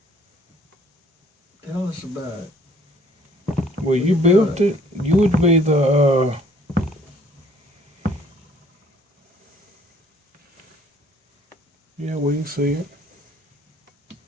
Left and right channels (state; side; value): normal; both; correlation 0.58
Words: Tell us about it. Well, you built it. You would be the, yeah, we can see it.